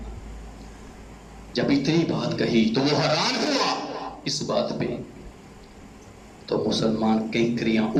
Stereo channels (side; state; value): both; identical; correlation 1.00